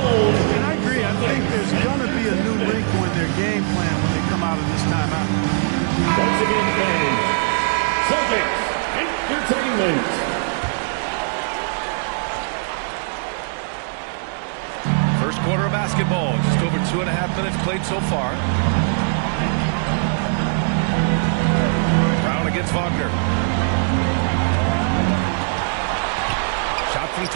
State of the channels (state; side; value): silent; left; digital silence